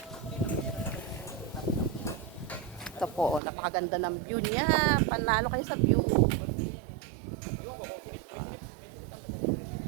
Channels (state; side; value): drops out; left; at 3.4 s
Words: Ito po, napakaganda ng view niya. Panalo kayo sa view.